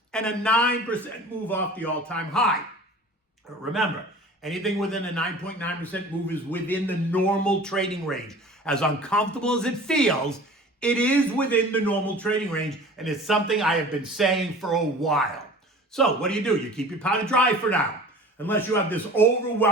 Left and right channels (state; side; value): normal; both; correlation 0.42